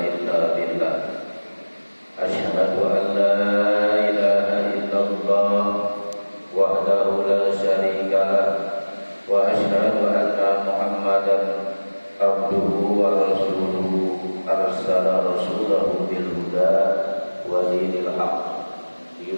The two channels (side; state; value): both; inverted; correlation -1.00